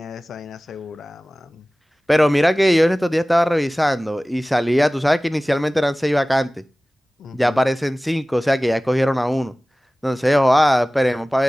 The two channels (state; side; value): normal; both; correlation 0.98